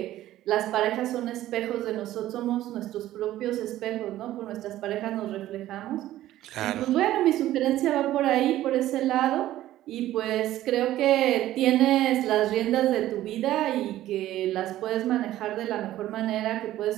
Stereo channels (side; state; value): left; quieter; 14.2 dB